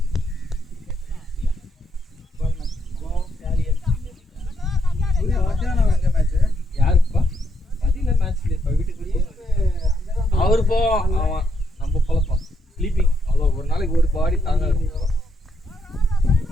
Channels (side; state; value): both; normal; correlation 0.77